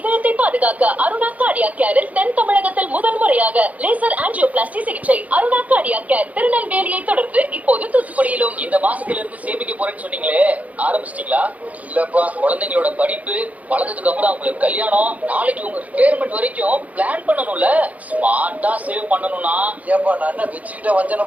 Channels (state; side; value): late; left; 0.071 ms